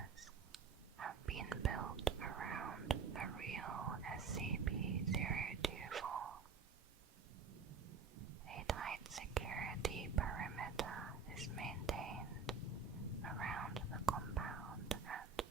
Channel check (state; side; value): quieter; left; 5.3 dB